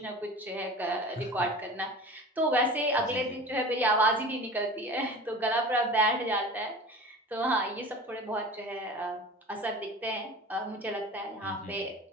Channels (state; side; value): normal; both; correlation 0.37